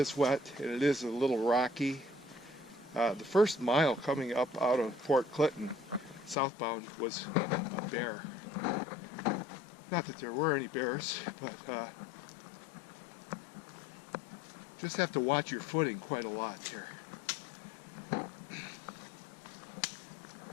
wet and it is a little rocky. The first mile coming up out of Fort Clinton southbound was a bear. Not that there were any bears, but just have to watch your footing quite a lot here.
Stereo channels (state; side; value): drops out; right; at 6.4 s